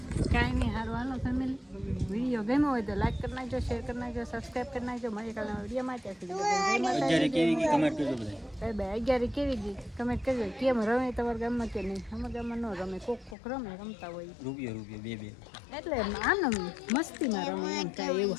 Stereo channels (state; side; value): drops out; right; at 13.4 s